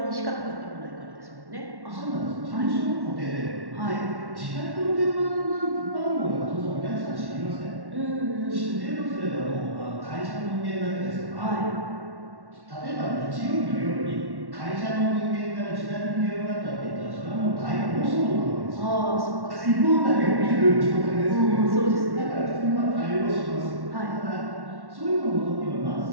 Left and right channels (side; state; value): left; late; 1.1 ms